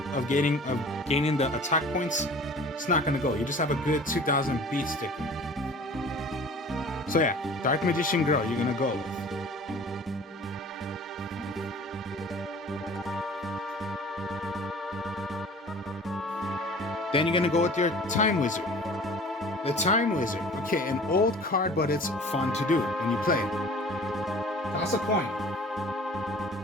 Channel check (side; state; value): both; normal; correlation 0.45